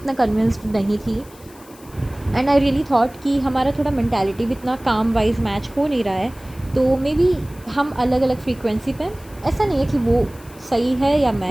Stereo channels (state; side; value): noise; left; hiss, 24 dB below the sound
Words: कन्विंस्ड नहीं थी। एंड आई रियली थॉट कि हमारा थोड़ा मेंटालिटी भी इतना काम वाइज मैच हो नहीं रहा है, तो मे बी हम अलग अलग फ्रीक्वेंसी पे, ऐसा नहीं है कि वो सही है या